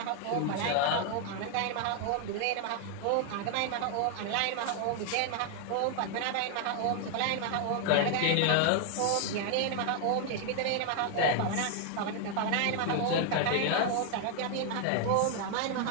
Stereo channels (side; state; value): both; different; correlation 0.00